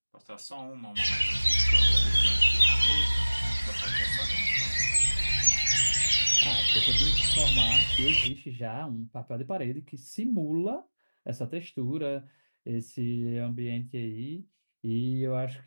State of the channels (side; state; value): both; inverted; correlation -1.00